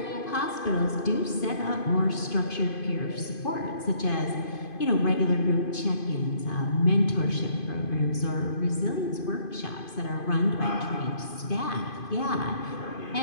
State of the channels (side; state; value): right; late; 2.5 ms